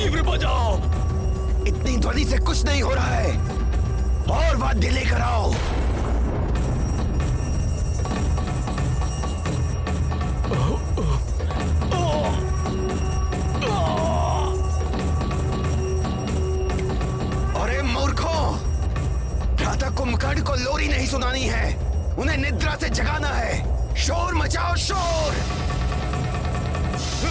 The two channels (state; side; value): identical; both; correlation 1.00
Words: बजाओ। इतनी ध्वनि से कुछ नहीं हो रहा है, और वाद्य लेकर आओ। अरे मूर्खों, भ्राता कुंभकर्ण को लोरी नहीं सुनानी है, उन्हें निद्रा से जगाना है। शोर मचाओ, शोर।